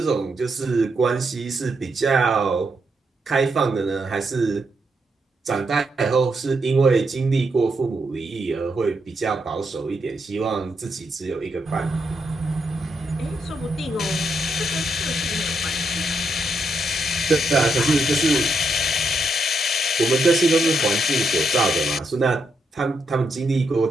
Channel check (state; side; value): normal; both; correlation 0.80